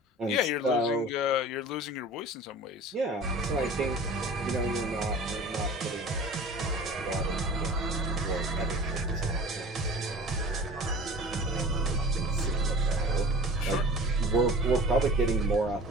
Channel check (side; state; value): both; normal; correlation 0.41